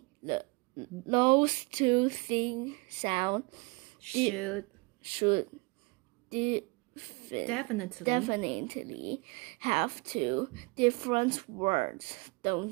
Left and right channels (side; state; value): left; quieter; 27.4 dB